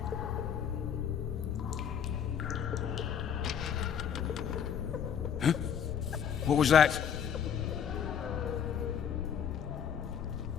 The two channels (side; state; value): right; quieter; 8.2 dB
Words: Huh? What was that?